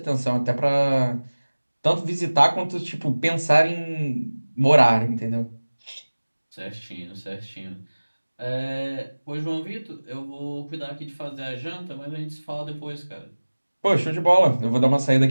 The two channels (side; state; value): both; inverted; correlation -1.00